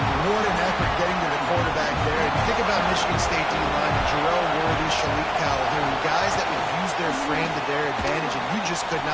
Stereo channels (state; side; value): identical; both; correlation 1.00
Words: What an effort getting to the quarterback there. And you think about Michigan State D-line, Jarrell Worthy, Shalik Calhoun, guys that would use their frame to their advantage, and you just could